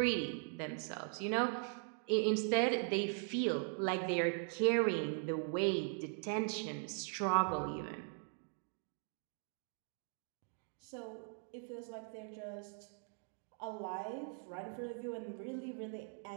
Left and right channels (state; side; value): silent; left; 51 dB below the other